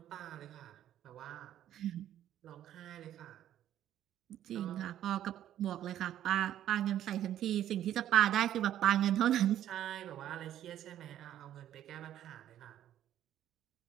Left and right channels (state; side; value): quieter; left; 11.6 dB